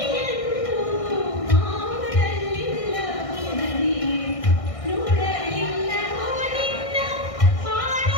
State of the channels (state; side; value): late; right; 1.6 ms